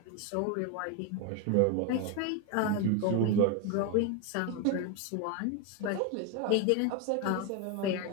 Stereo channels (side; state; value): both; different; correlation 0.01